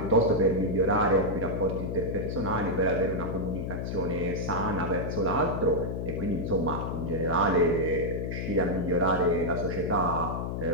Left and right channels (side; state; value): left; noise; hum, 3 dB below the sound